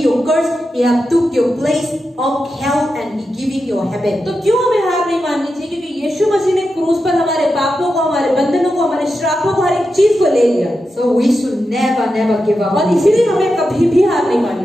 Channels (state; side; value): normal; both; correlation 0.89